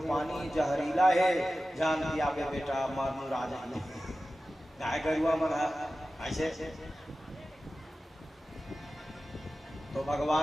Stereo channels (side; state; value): both; normal; correlation 0.95